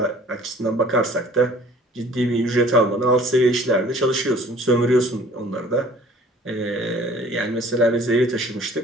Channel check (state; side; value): normal; both; correlation 0.51